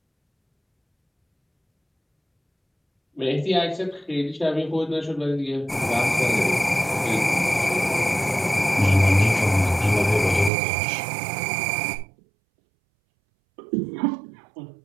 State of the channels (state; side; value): drops out; left; at 10.5 s